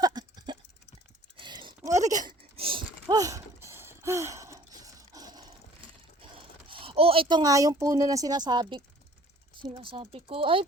Oh, ito nga yung puno na sinasabi ko. Ay,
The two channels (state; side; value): normal; both; correlation 0.53